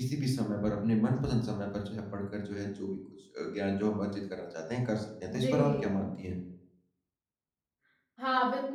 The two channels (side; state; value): both; identical; correlation 1.00